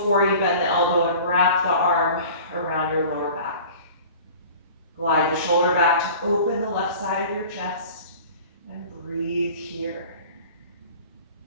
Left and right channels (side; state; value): both; inverted; correlation -0.42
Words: you bend the elbow and wrap the arm around your lower back. Glide the shoulder back to open the left side of your chest and breathe here.